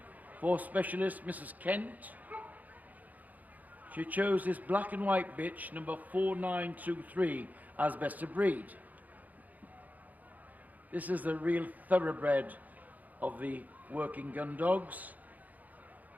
for specialist Mrs. Kent. She chose this black and white bitch, number 4923, as best of breed. This is the real thoroughbred of the working gun dogs.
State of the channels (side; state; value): left; late; 0.079 ms